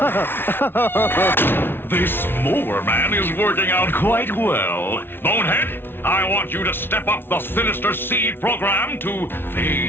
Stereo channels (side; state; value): right; late; 0.11 ms